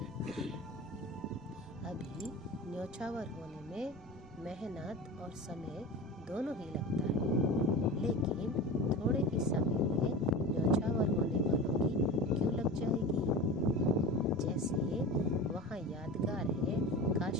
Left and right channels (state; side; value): noise; right; rumble, 22 dB below the sound